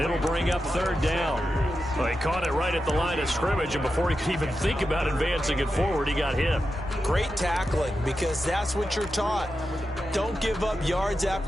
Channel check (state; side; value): normal; both; correlation 0.90